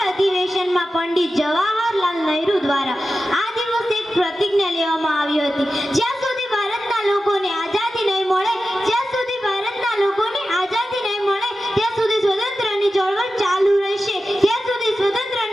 અધિવેશનમાં પંડિત જવાહરલાલ નહેરુ દ્વારા આ દિવસે એક પ્રતિજ્ઞા લેવામાં આવી હતી, જ્યાં સુધી ભારતના લોકોને આઝાદી નહીં મળે, જ્યાં સુધી ભારતના લોકોને આઝાદી નહીં મળે ત્યાં સુધી સ્વતંત્રની ચળવળ ચાલુ રહેશે, ત્યાં સુધી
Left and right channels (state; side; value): normal; both; correlation 0.93